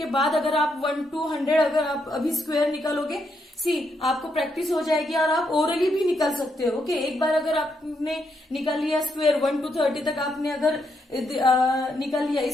के बाद अगर आप 1 to 100 अगर आप अभी स्क्वायर निकालोगे, सी आपको प्रैक्टिस हो जाएगी और आप ओरली भी निकाल सकते हो. ओके, एक बार अगर आपने निकाल लिया स्क्वायर 1 to 30 तक आपने अगर निकाल लिया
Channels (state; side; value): normal; both; correlation 0.79